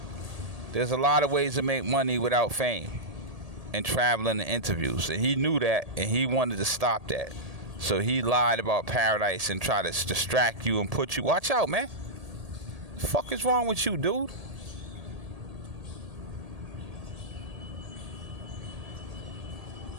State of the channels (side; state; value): left; late; 1.8 ms